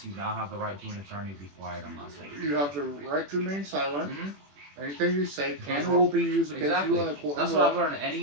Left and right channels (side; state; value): left; late; 21 ms